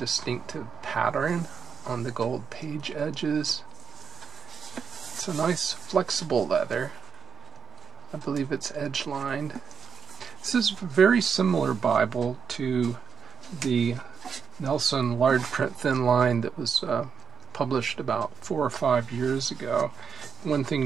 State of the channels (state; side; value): quieter; left; 6.8 dB